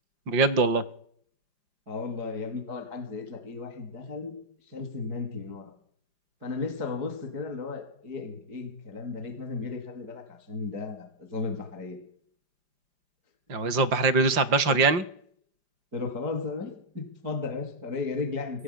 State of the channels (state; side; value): late; left; 5.0 ms